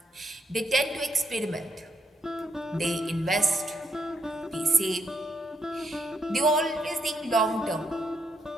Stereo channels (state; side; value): normal; both; correlation 0.77